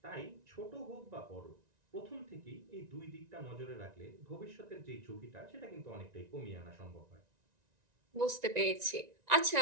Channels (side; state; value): left; late; 1.9 ms